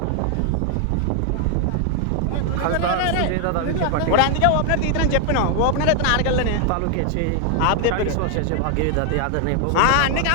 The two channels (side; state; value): both; different; correlation 0.00